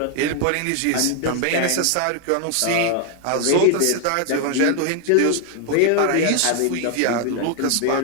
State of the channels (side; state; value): both; different; correlation 0.00